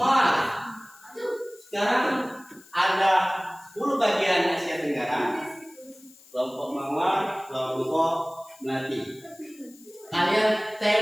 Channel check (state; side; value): noise; left; hiss, 24 dB below the sound